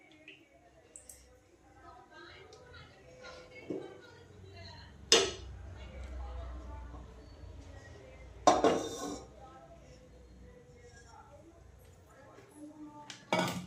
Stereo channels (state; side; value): identical; both; correlation 1.00